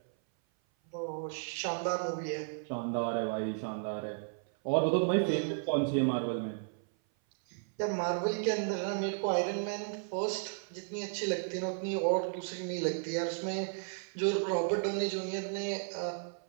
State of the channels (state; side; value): silent; left; 55 dB below the other